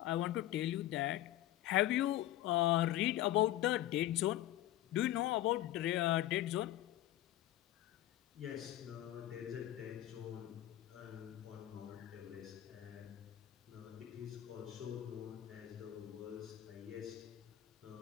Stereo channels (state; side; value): quieter; right; 13.9 dB